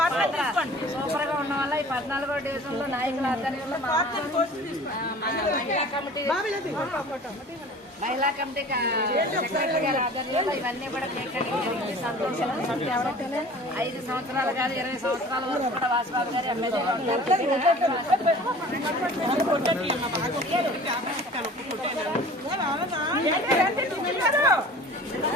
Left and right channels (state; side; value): normal; both; correlation 0.44